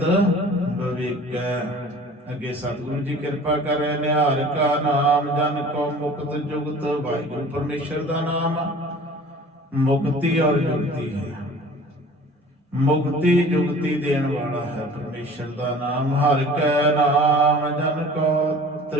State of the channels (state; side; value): normal; both; correlation 0.45